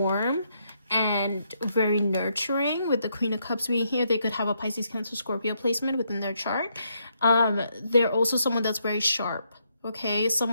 and very nurturing. With the Queen of Cups being here, they could have a Pisces, Cancer, Scorpio placement within their chart. They're also someone that's very sharp, okay?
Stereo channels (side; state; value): both; inverted; correlation -0.76